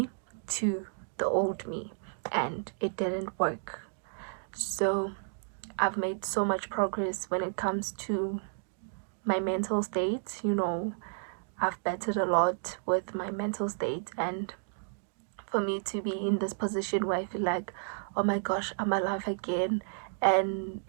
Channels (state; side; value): silent; left; digital silence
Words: to the old me, and it didn't work. So I've made so much progress when it comes to my mental state. I've bettered a lot with my mental state, and for me to be in this position where I feel like, oh my gosh, I'm alive again, and